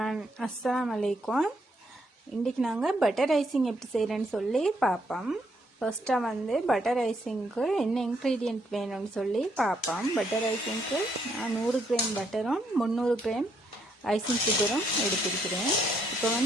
அஸ்ஸலாமு அலைக்கும். இன்றைக்கி நாங்கள் பட்டர் ஐசிங் எப்படி செய்கிறேன்னு சொல்லி பார்ப்போம். ஃபர்ஸ்ட்டாக வந்து பட்டர் ஐசிங்க்கு என்ன இன்க்ரீடியன்ட் வேணும்னு சொல்லி பார்ப்போம். பட்டர் ஐசிங்க்கு நான் 100 கிராம் பட்டரும் 300 கிராம் ஐசிங் சுகரும் எடுத்திருக்கிறேன். இப்போ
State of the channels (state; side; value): normal; both; correlation 0.74